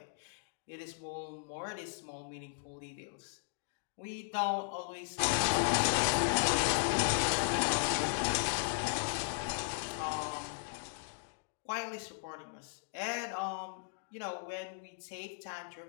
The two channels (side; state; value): right; silent; digital silence